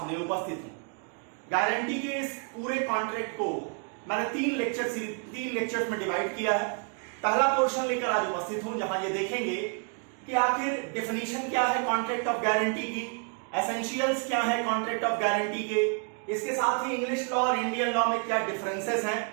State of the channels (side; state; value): left; quieter; 39.9 dB